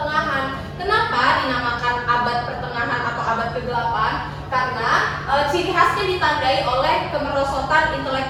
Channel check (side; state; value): both; identical; correlation 1.00